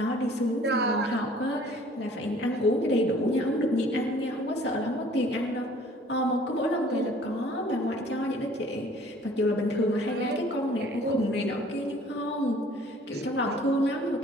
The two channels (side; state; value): both; normal; correlation 0.54